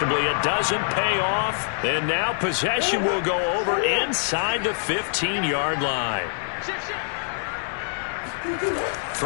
it doesn't pay off. And now possession will go over inside the 15-yard line.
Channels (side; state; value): right; silent; 62 dB below the other